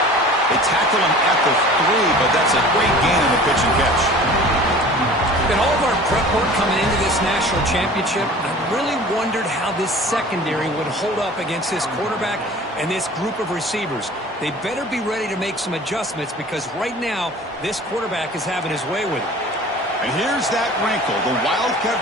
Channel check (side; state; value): both; normal; correlation 0.43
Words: They tackle him at the 3, but that's a great gain on the pitch and catch. In all of our prep work coming into this national championship, I really wondered how this secondary would hold up against this quarterback and this group of receivers. They better be ready to make some adjustments because right now, this quarterback is having his way with it. And here's that wrinkle, the